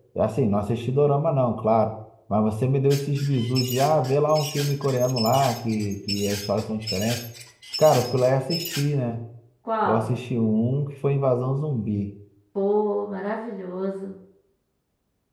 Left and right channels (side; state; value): both; identical; correlation 1.00